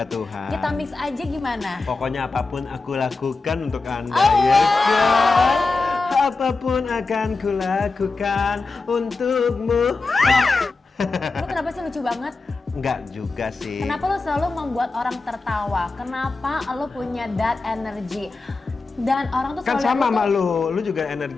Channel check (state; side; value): quieter; right; 3.8 dB